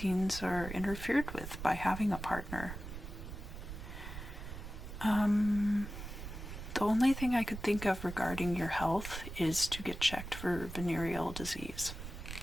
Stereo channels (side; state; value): right; noise; rumble, 9 dB below the sound